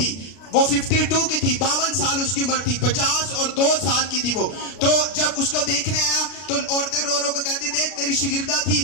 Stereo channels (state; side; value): late; right; 32 ms